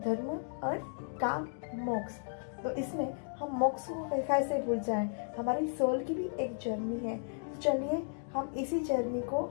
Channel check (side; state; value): right; silent; digital silence